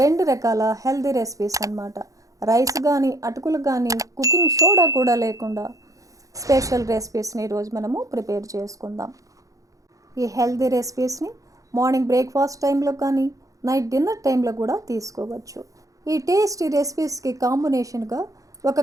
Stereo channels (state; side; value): late; left; 0.16 ms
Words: 2 రకాల హెల్దీ రెసిపీస్ అన్నమాట. రైస్ కానీ అటుకులు కానీ కుకింగ్ సోడా కూడా లేకుండా స్పెషల్ రెసిపీస్ని ఈరోజు మనము ప్రిపేర్ చేసుకుందాం. ఈ హెల్దీ రెసిపీస్ని మార్నింగ్ బ్రేక్ఫాస్ట్ టైంలో కానీ నైట్ డిన్నర్ టైంలో కూడా తీసుకోవచ్చు. ఈ టేస్టీ రెసిపీస్కి కాంబినేషన్గా ఒక